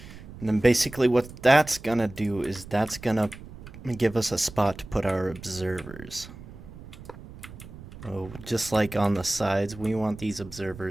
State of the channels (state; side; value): noise; right; rumble, 16 dB below the sound